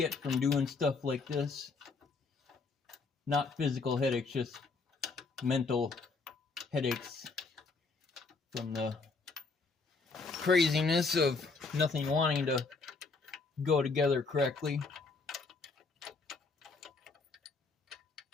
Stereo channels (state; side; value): quieter; right; 4.1 dB